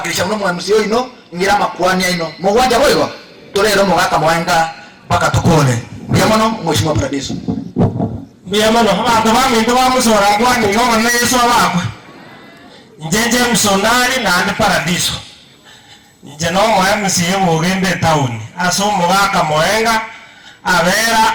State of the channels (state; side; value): identical; both; correlation 1.00